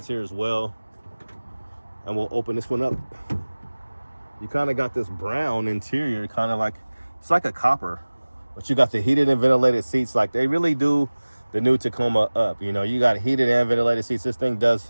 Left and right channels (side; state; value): both; inverted; correlation -1.00